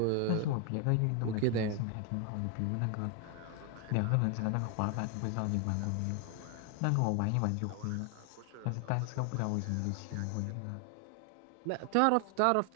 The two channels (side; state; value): both; different; correlation 0.00